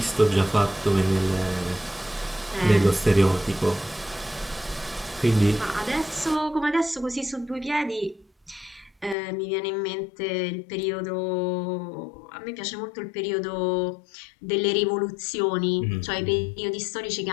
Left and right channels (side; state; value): right; drops out; at 9.2 s